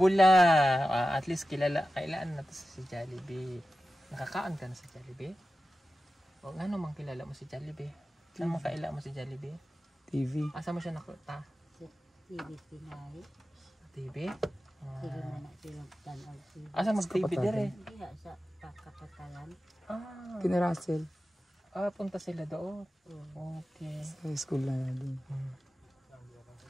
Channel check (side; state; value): both; normal; correlation 0.93